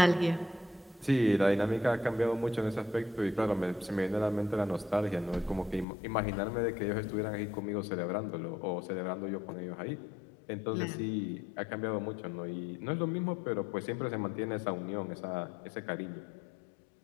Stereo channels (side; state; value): right; drops out; at 5.9 s